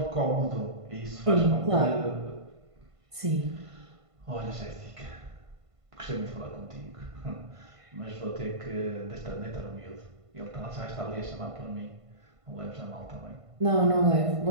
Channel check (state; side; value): late; left; 1.5 ms